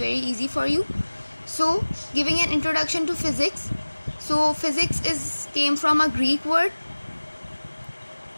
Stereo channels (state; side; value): inverted; both; correlation -1.00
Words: easy for you. So, giving an introduction to physics. So, physics came from a Greek word